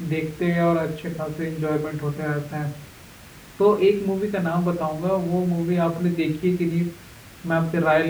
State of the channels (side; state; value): both; identical; correlation 1.00